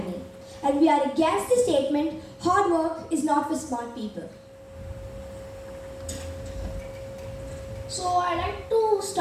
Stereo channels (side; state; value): both; identical; correlation 1.00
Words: and we are against the statement hard work is not for smart people. So I like to